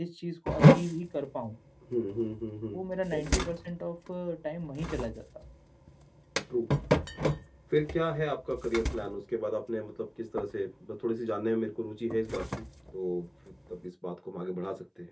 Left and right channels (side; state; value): both; identical; correlation 1.00